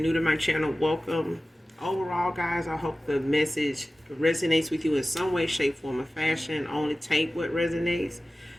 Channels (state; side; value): normal; both; correlation 0.96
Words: to my channel, welcome. Overall, guys, I hope the message resonates with you in some way, shape, form, or fashion. Only take what resonates